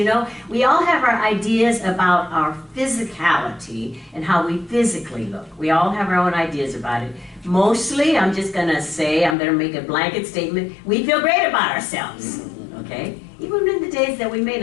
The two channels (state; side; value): drops out; right; at 9.3 s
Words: know, we all have our ideas about our physicality and how we physically look. We all have our own ideas about it. Mostly, I'm just going to say, I'm going to make a blanket statement, we feel great about ourselves, okay? Even in the days that we may